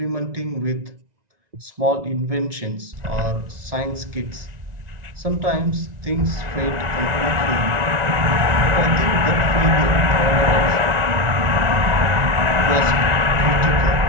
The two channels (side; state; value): left; late; 1.9 ms